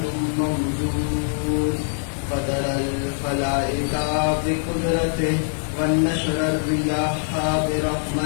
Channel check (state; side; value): silent; right; digital silence